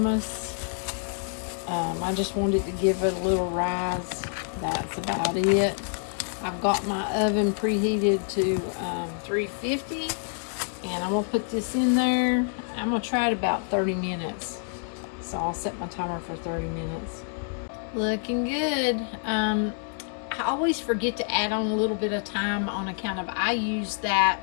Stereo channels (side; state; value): right; silent; 60 dB below the other